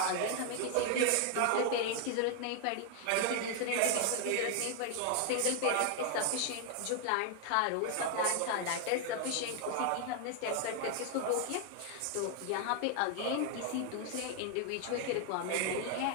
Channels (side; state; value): both; different; correlation 0.00